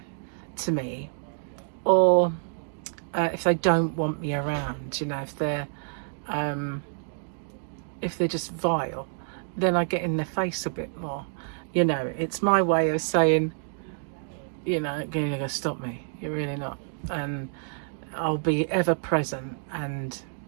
to me, or if they don't want me around, you know, if they're just vile, then I get in their face a bit more. You know, it's my way of saying, you know, you're going to stop me. You're really not. And I'll be ever present and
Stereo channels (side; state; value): left; silent; digital silence